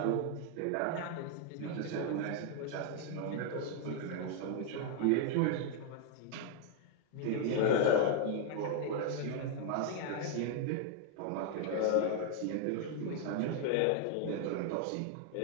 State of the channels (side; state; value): both; different; correlation 0.00